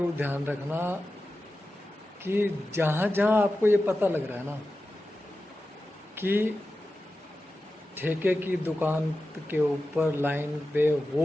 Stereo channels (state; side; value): normal; both; correlation 0.93